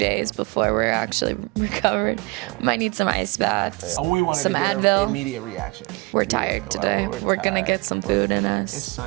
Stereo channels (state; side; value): quieter; left; 26.4 dB